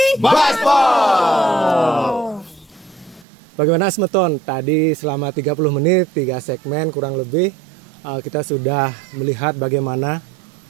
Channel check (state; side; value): drops out; left; at 3.2 s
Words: Bagaimana Semeton? Tadi selama 30 menit, 3 segmen kurang lebih, kita sudah melihat bagaimana